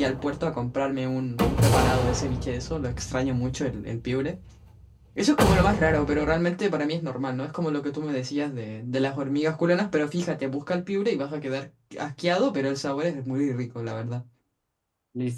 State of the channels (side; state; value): both; identical; correlation 1.00